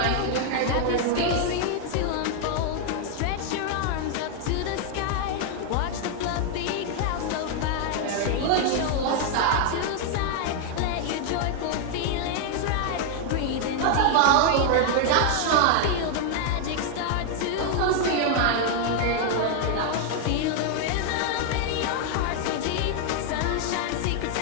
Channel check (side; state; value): both; different; correlation 0.00